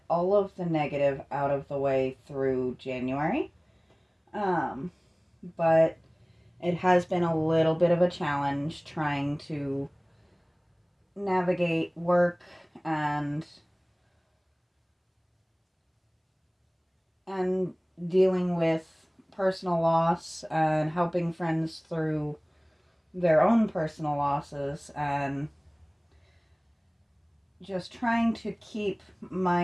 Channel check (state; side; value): identical; both; correlation 1.00